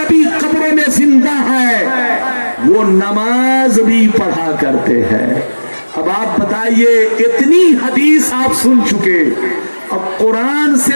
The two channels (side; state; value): both; inverted; correlation -1.00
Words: कब्रों में जिंदा है, वो नमाज भी पढ़ा करते हैं। अब आप बताइए, इतनी हदीस आप सुन चुके, अब कुरान